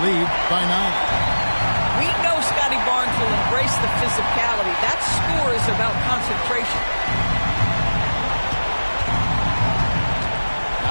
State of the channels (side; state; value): both; inverted; correlation -1.00